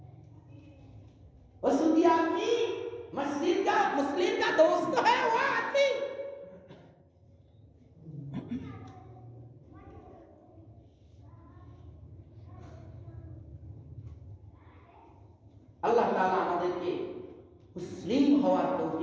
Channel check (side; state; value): both; identical; correlation 1.00